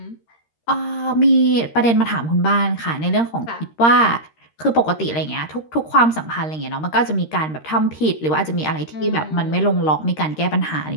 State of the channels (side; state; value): right; late; 13 ms